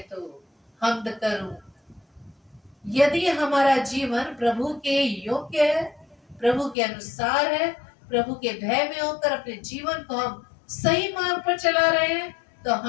तो हमद करूं, यदि हमारा जीवन प्रभु के योग्य है, प्रभु के अनुसार है, प्रभु के भय में होकर अपने जीवन को हम सही मार्ग पर चला रहे हैं, तो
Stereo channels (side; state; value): right; drops out; at 6.8 s